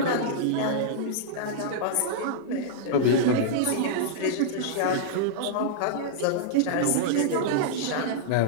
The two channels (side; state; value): both; different; correlation -0.02